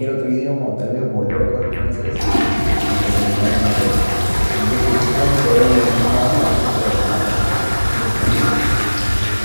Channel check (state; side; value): inverted; both; correlation -1.00